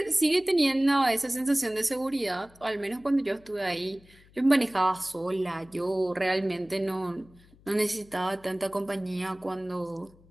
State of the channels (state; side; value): noise; left; hum, 27 dB below the sound